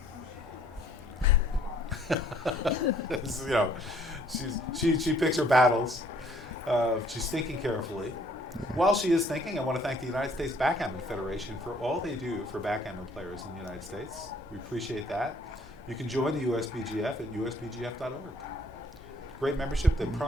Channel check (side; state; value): both; normal; correlation 0.60